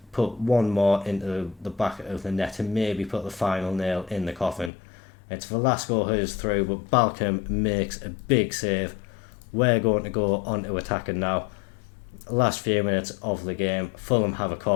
put one more into the back of the net and maybe put the final nail in the coffin. It's Velasco who's through, but Balcom makes a big save. We're going to go on to attacking now. Last few minutes of the game, Fulham have a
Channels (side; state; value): right; drops out; at 4.7 s